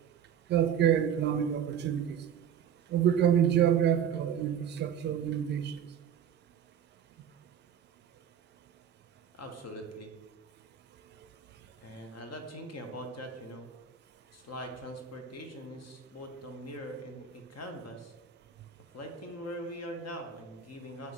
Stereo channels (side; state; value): left; quieter; 8.5 dB